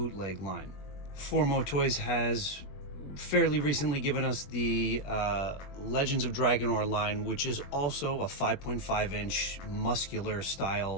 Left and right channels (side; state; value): right; late; 21 ms